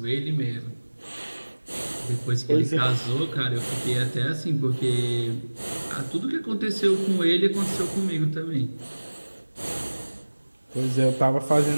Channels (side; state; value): both; inverted; correlation -1.00